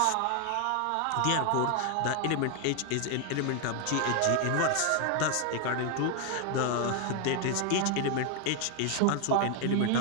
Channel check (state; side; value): different; both; correlation 0.01